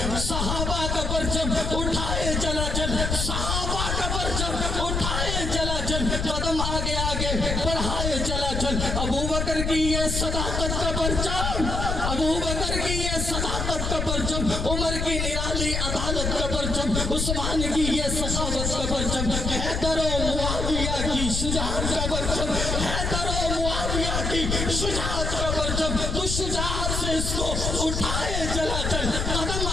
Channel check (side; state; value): left; noise; rumble, 1 dB below the sound